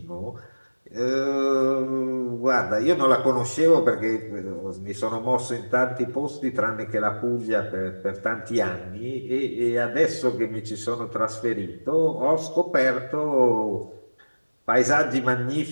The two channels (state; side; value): inverted; both; correlation -1.00